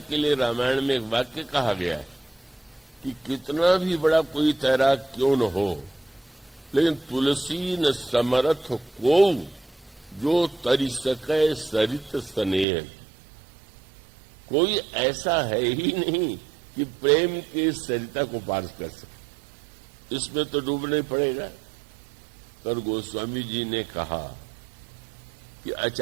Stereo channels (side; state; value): left; drops out; at 12.7 s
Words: लिए रामायण में एक वाक्य कहा गया है कि कितना भी बड़ा कोई तैराक क्यों न हो, लेकिन तुलसी न समरथ को जो तरी सके सरित स्नेह। कोई ऐसा है ही नहीं कि प्रेम के सरिता को पार कर सके, इसमें तो डूबना ही पड़ेगा। पर गोस्वामी जी ने कहा कि